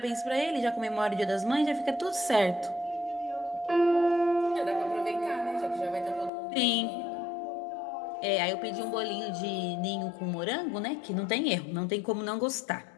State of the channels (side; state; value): right; drops out; at 6.3 s